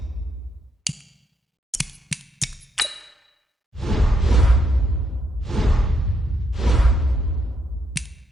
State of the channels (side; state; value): both; normal; correlation 0.77